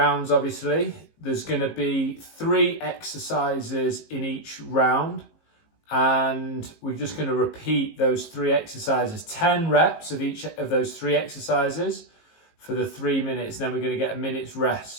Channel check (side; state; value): right; late; 19 ms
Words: obviously. There's going to be 3 exercises in each round, and we're just going to repeat those 3 exercises, 10 reps of each of those 3 exercises for the 3 minutes. Then we're going to get a minute's